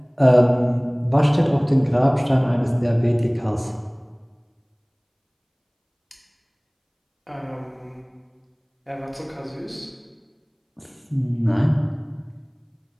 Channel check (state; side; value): identical; both; correlation 1.00